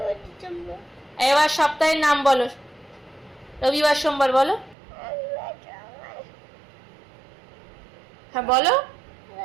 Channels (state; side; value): drops out; left; at 4.8 s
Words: December. এবার সপ্তাহের নাম বলো। রবিবার সোমবার বলো। হ্যাঁ বলো।